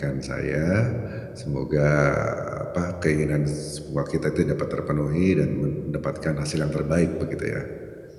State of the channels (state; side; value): identical; both; correlation 1.00